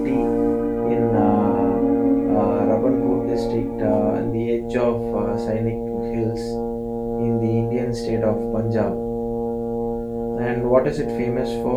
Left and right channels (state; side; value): identical; both; correlation 1.00